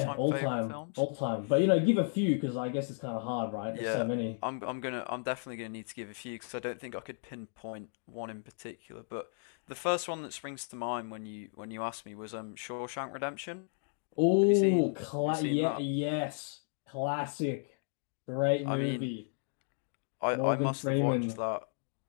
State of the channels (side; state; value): right; silent; digital silence